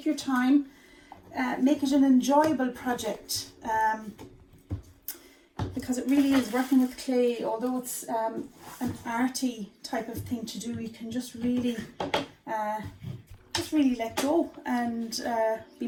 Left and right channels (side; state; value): both; identical; correlation 1.00